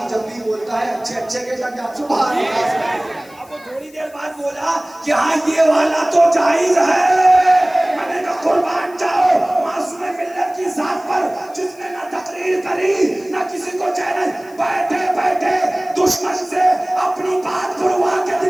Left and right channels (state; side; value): noise; left; hiss, 26 dB below the sound